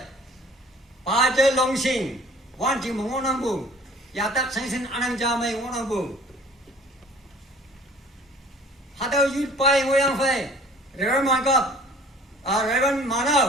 pa je longsing wan ji ngonang bu ya tak sengsen anang ja mai ngonang bu hada youth pai ngoyang phai Reverend Mangkap, Reverend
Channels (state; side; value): normal; both; correlation 0.50